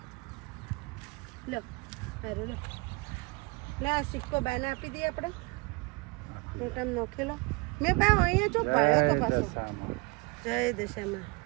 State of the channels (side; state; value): left; quieter; 27.9 dB